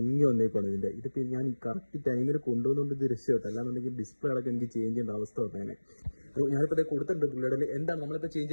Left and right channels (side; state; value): both; inverted; correlation -1.00